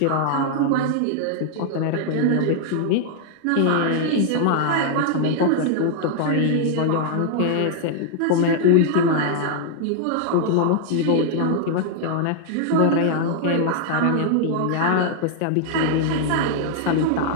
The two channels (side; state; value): both; different; correlation 0.00